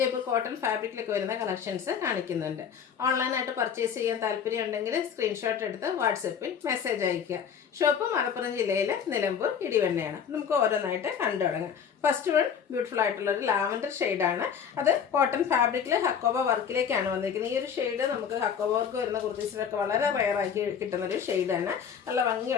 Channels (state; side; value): quieter; right; 7.5 dB